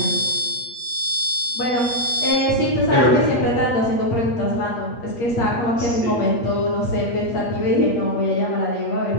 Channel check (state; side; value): late; right; 8.4 ms